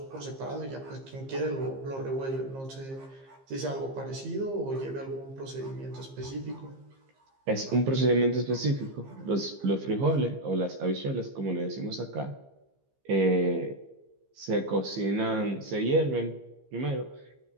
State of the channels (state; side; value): late; left; 15 ms